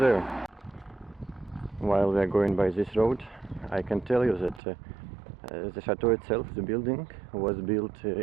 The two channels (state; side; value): drops out; left; at 4.6 s